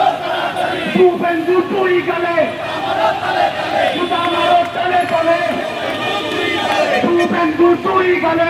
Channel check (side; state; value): both; identical; correlation 1.00